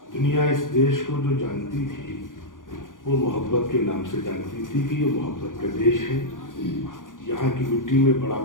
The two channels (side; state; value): right; late; 0.89 ms